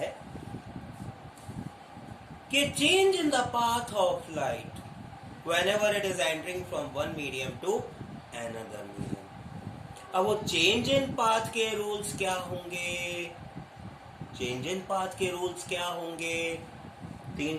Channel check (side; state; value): both; identical; correlation 1.00